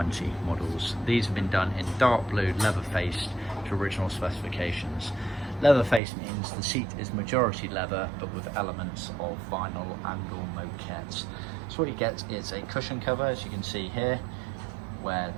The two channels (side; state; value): left; drops out; at 6.0 s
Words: models. These have been done in dark blue, leather faced to original specifications. Leather faced means the seat is majority leather but with elements of vinyl and or moquette. So what you get is a cushion cover, as you can see here, where